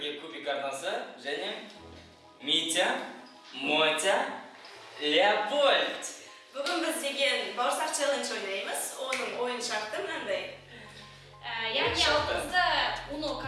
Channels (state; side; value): identical; both; correlation 1.00